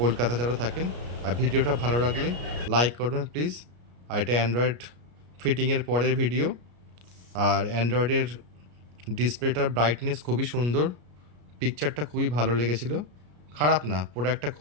কলকাতা যারা থাকেন। আর ভিডিওটা ভালো লাগলে লাইক করবেন প্লিজ। আর এটা অ্যান্ড্রয়েড ফিটিংয়ের পরের ভিডিও। আর অ্যান্ড্রয়েডের ডিসপ্লেটার ব্রাইটনেস খুবই সুন্দর, পিকচারটা খুবই ভালো লেগেছিলো, খারাপ না, প্রোডাক্টটা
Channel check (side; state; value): left; late; 33 ms